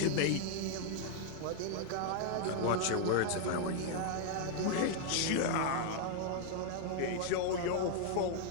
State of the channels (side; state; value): both; different; correlation 0.00